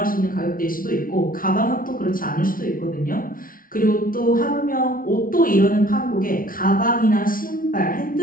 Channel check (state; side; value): late; right; 0.41 ms